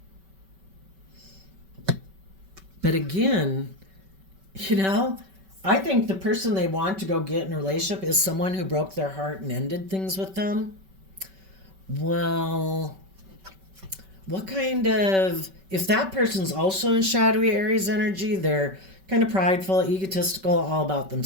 But again, You know, I think the person they want to go get in a relationship is someone who broke their heart and ended things with them. Well, what kind of, if that person's also in shadowy Aries energy, they're kind of prideful, egotistical, all about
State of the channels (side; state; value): left; late; 5.2 ms